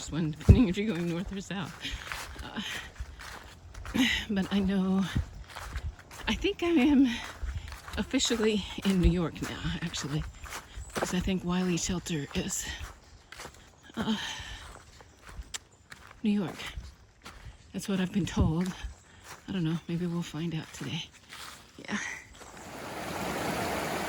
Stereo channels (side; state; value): both; identical; correlation 1.00